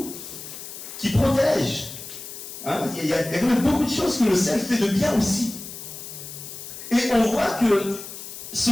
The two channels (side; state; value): left; noise; hiss, 11 dB below the sound